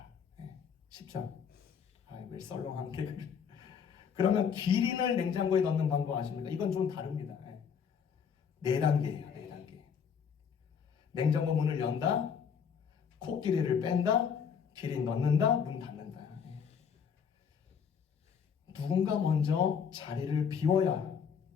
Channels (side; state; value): right; quieter; 7.0 dB